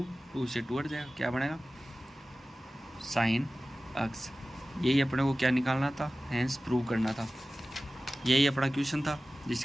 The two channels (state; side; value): normal; both; correlation 0.96